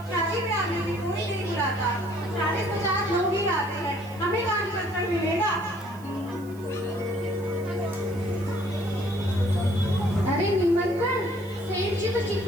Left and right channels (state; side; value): noise; right; hiss, 24 dB below the sound